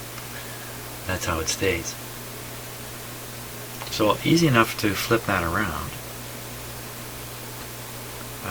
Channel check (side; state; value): both; identical; correlation 1.00